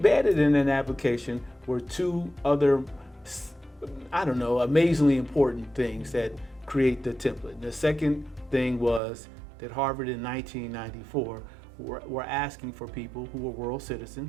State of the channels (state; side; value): drops out; left; at 9.0 s